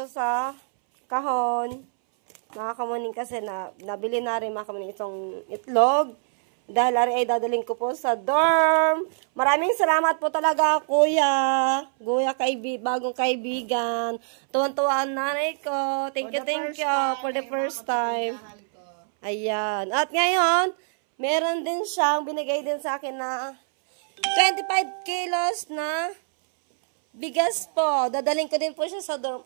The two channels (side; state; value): left; silent; 62 dB below the other